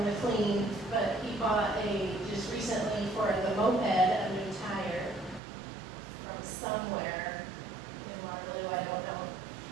the clean, but he bought just recently for the moped, a new tire from somewhere in Waterloo, I don't know.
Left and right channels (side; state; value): left; drops out; at 5.4 s